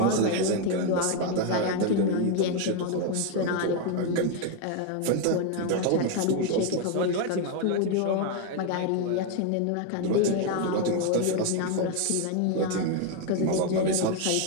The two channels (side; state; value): both; different; correlation 0.01